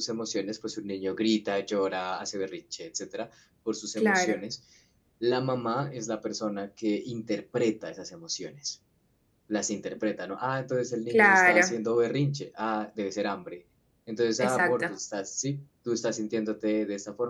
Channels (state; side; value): identical; both; correlation 1.00